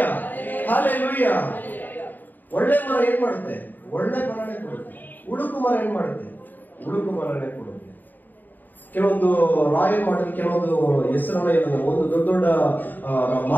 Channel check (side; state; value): right; late; 0.088 ms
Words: hallelujah. ಒಳ್ಳೆ ಮರ ಏನ್ ಮಾಡುತ್ತೆ? ಒಳ್ಳೆ ಫಲನೇ ಕೊಡುತ್ತೆ. ಉಡುಕು ಮರ ಏನ್ ಮಾಡುತ್ತೆ? ಉಡುಕು ಮರನೇ ಕೊಡುತ್ತೆ. ಕೆಲವೊಂದು ರಾಯಲ್ ಮಾರ್ಟ್, ಕೆಲವೊಂದು ಹೆಸರನ್ನ ಒಂದು ದೊಡ್ಡ ದೊಡ್ಡ